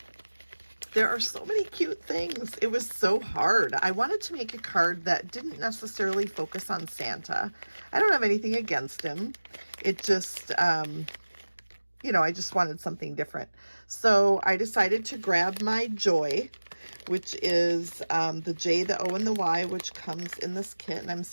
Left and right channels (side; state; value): both; inverted; correlation -1.00